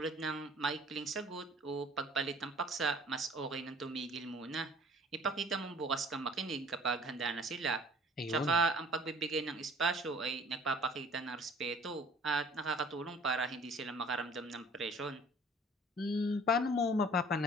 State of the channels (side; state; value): both; normal; correlation 0.51